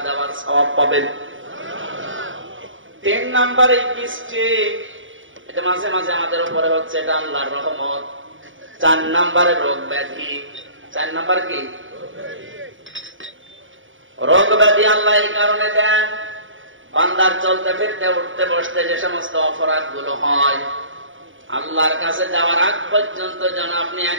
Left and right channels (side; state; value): left; late; 0.57 ms